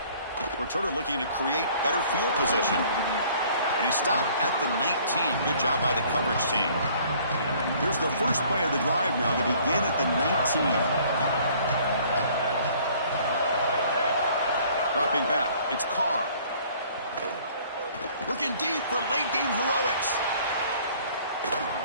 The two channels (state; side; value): inverted; both; correlation -0.56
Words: Returner looking to create better field position. And he stopped at the 19. Good job by the coverage team. Here's the first play of the drive now to begin at the 19. Dropping back, it's Carr. Looking deep for late-game heroics.